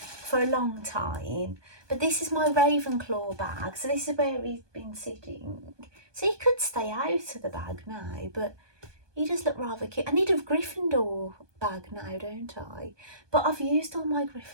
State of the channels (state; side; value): late; left; 1.2 ms